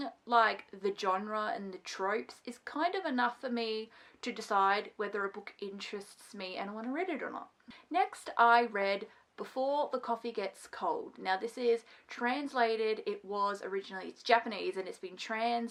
like the genre and the tropes is kind of enough for me to decide whether a book interests me and I want to read it or not. Next, I read Before the Coffee Gets Cold. Now this is translated, it's Japanese and it's been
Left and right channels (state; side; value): identical; both; correlation 1.00